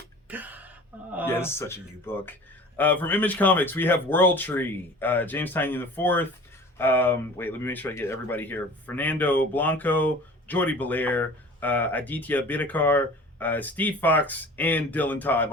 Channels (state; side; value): normal; both; correlation 0.42